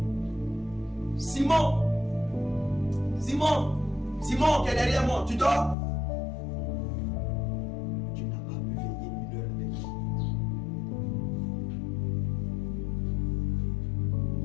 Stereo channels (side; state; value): right; drops out; at 5.8 s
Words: Simon, qui est derrière moi, tu dors? Tu n'as pas pu veiller 1 heure avec moi.